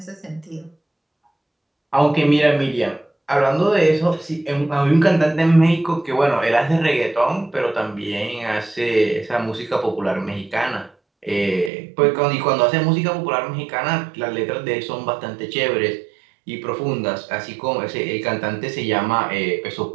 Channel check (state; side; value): drops out; left; at 11.7 s